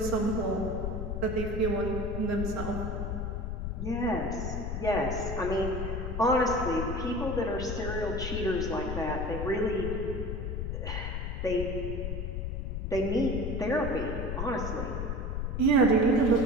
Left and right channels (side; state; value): left; noise; rumble, 3 dB below the sound